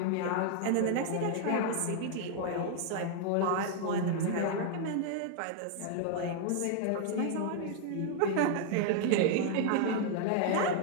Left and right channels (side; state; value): both; different; correlation 0.00